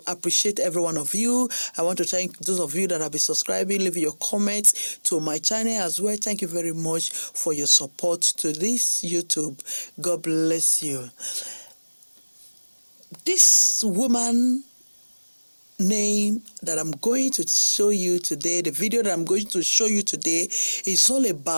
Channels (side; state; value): both; inverted; correlation -1.00